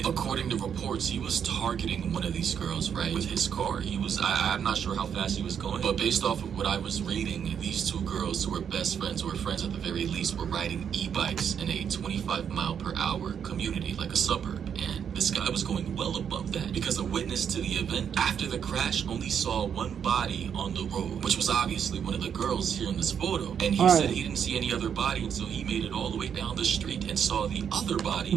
according to reports, he was targeting one of these girls, right, with his car. I'm not sure how fast he was going, but based off of what I was reading, these two girls who were best friends, or friends at the very least, were riding e-bikes in a 25-mile-per-hour community, like a suburb. And this guy was going well above that because a witness to the event after the crash only saw one body on the road, which was obviously one of the girls here in this photo. And he said he didn't see any other body until he made it all the way down the street and saw the other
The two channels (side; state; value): left; quieter; 7.9 dB